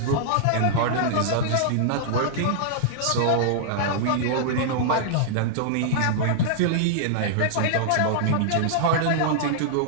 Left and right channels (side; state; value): both; different; correlation -0.01